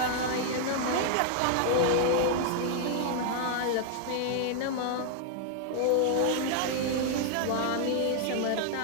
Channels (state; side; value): different; both; correlation 0.00